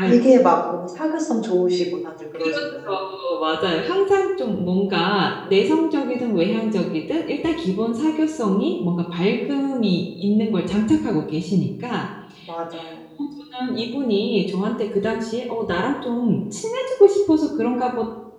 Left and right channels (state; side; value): identical; both; correlation 1.00